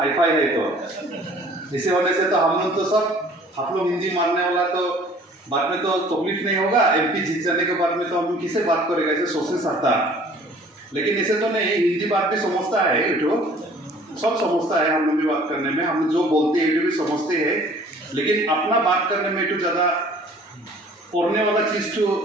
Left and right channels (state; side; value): normal; both; correlation 0.52